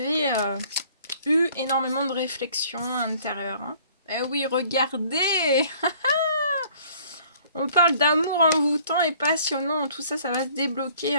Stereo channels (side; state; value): both; inverted; correlation -0.56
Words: eu énormément de réflexions intérieures. Hein. Eh oui, regardez. On parle d'amour envoûtant et passionnant. Tout ça, ça va se débloquer